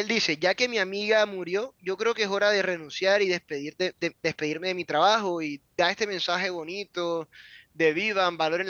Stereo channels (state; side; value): identical; both; correlation 1.00